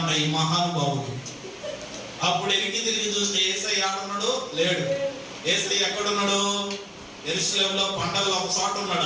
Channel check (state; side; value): identical; both; correlation 1.00